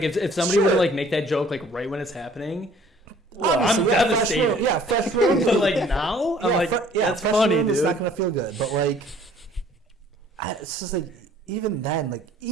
if somebody were to like make that joke like right when it's happening, I'm devastated. Fresh room. But like now, I'm like, that's fresh funny, room dude. It's not gonna feel good. But like, it's just like even then,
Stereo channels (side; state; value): both; normal; correlation 0.55